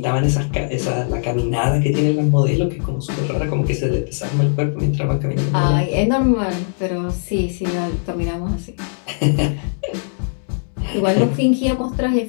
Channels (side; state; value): right; silent; 66 dB below the other